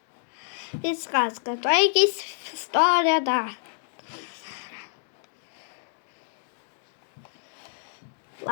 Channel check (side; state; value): right; silent; digital silence